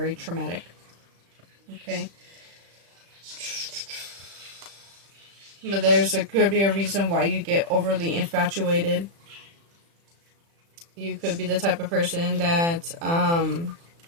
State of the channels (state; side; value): late; left; 35 ms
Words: traumatic, okay. But could be a reason why you get overly infatuated. You could be the type of person that